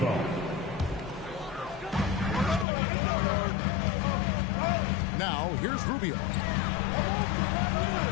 Now, here's Rubio.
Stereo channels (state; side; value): drops out; right; at 2.7 s